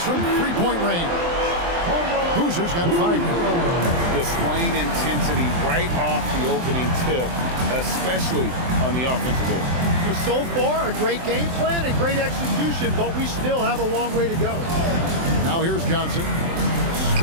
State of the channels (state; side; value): late; left; 23 ms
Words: from three-point range. Boozer's got 5 now. Displaying intensity right off the opening tip, especially on the offensive end. So far, a great game plan and great execution, but we still have a long way to go. Now here's Johnson.